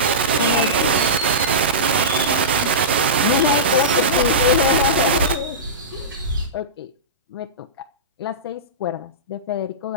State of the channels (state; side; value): normal; both; correlation -0.19